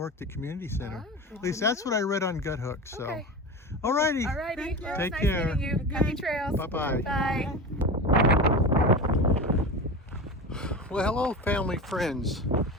the community center. Oh, good At least to that's know. what I read on Gut Hook. So, Okay. alrighty. Alrighty. Thank you. Well, Take nice care. meeting you. Happy trails. Bye-bye. Bye. Well, hello, family, friends,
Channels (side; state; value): both; normal; correlation 0.27